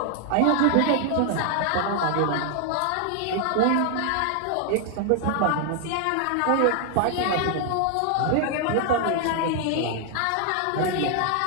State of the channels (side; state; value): both; different; correlation 0.00